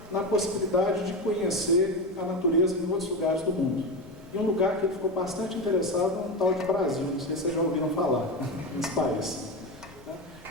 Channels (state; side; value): normal; both; correlation 0.19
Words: na possibilidade de conhecer a natureza em outros lugares do mundo. E um lugar que ele ficou bastante interessado é um tal de Brasil, não sei se vocês já ouviram falar nesse país.